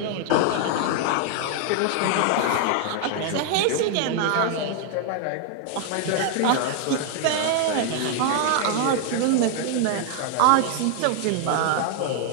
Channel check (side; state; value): both; different; correlation 0.00